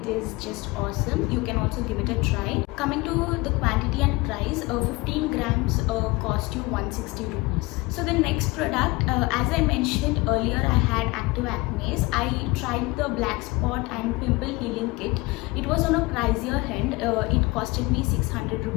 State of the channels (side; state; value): right; quieter; 22.8 dB